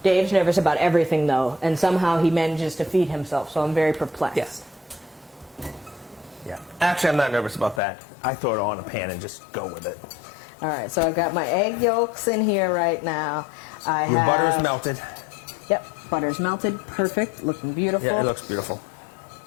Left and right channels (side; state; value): right; drops out; at 7.8 s